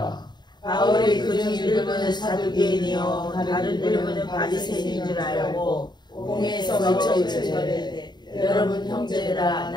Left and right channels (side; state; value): right; late; 0.21 ms